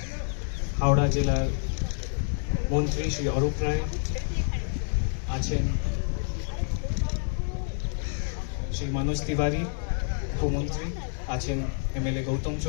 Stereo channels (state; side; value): silent; right; 59 dB below the other